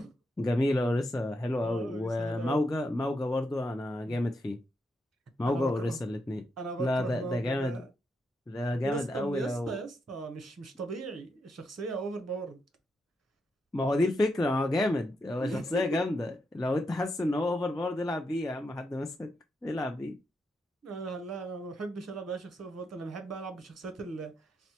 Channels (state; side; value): normal; both; correlation 0.83